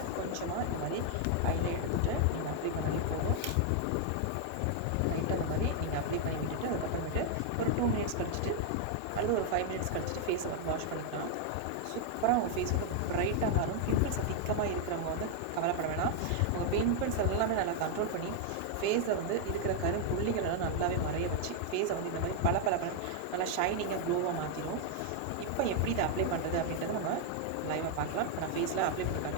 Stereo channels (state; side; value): different; both; correlation 0.00